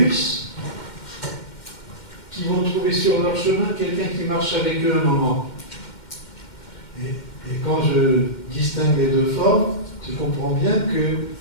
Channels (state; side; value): late; right; 2.1 ms